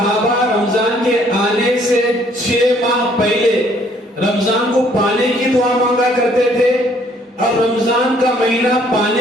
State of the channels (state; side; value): normal; both; correlation 0.63